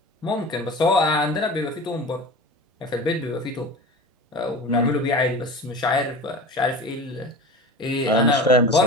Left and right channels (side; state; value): both; normal; correlation 0.34